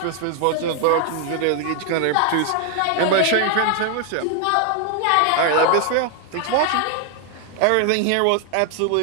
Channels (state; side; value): different; both; correlation 0.00